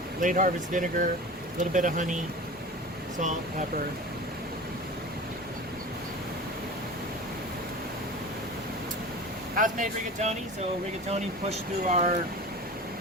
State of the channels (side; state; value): both; normal; correlation 0.34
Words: late harvest vinegar, a little bit of honey, salt, pepper. House-made rigatoni. So rigatoni pushed through our